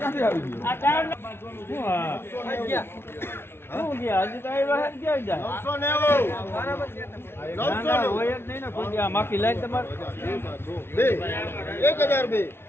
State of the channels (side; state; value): right; late; 0.12 ms